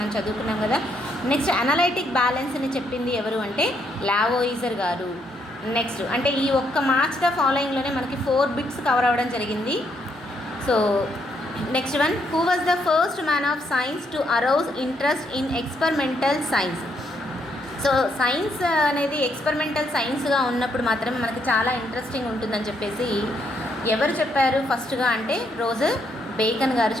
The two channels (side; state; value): both; normal; correlation 0.74